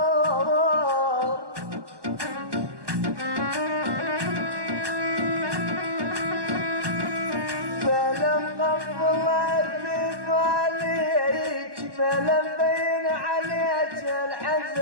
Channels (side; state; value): left; late; 1.2 ms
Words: بلا مقفل عليك بلا مبين عليك